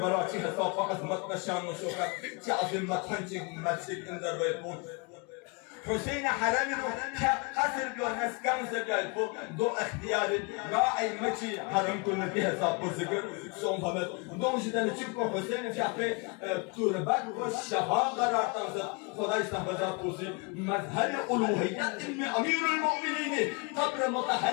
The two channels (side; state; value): right; quieter; 31.4 dB